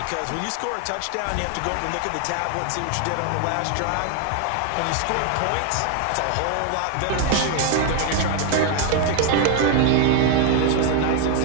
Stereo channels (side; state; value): both; different; correlation 0.01